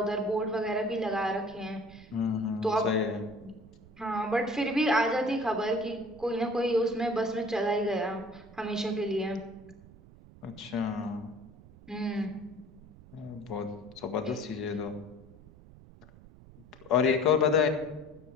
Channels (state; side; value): noise; right; rumble, 21 dB below the sound